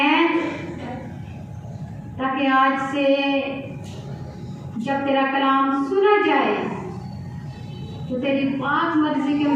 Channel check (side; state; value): both; identical; correlation 1.00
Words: ताकि आज से जब तेरा कलाम सुना जाए तो तेरी पाक मर्जी के